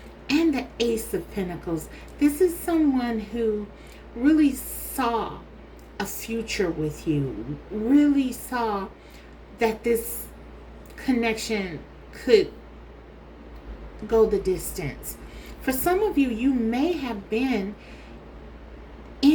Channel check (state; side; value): identical; both; correlation 1.00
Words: and the Ace of Pentacles. This is someone who really saw a future with you, really saw that this connection could go the distance. For some of you, you may have been